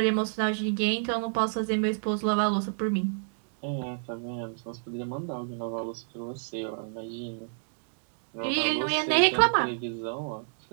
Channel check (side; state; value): left; silent; digital silence